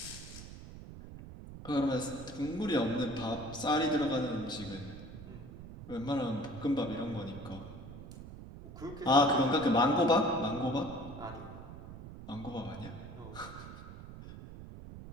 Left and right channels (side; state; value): right; noise; rumble, 13 dB below the sound